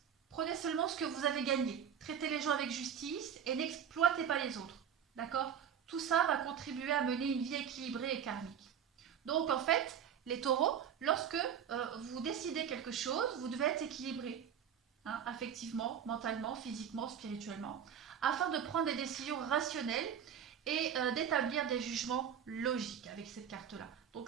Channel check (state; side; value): quieter; left; 8.4 dB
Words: que vous avez gagné. Traitez les gens avec justice et n'exploitez pas les autres. D'accord? Tout ça va contribuer à mener une vie équilibrée et karmique. Donc en fait, les taureaux, lorsque vous décidez quelque chose, vous devez être équilibré, hein, affectivement, mentalement, physiquement, spirituellement, afin de prendre des décisions rationnelles et d'établir des jugements logiques avec cette carte-là.